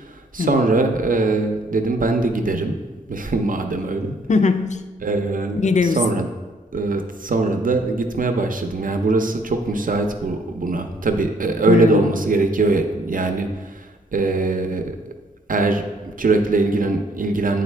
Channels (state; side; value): normal; both; correlation 0.64